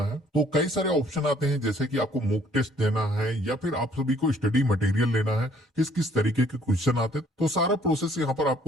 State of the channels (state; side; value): normal; both; correlation 0.61